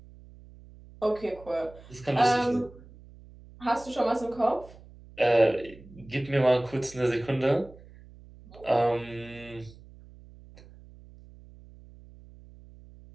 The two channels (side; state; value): right; noise; hum, 21 dB below the sound